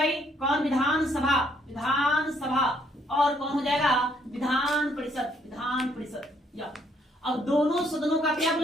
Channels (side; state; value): both; normal; correlation 0.68